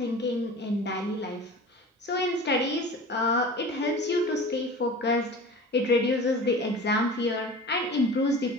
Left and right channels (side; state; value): both; normal; correlation 0.37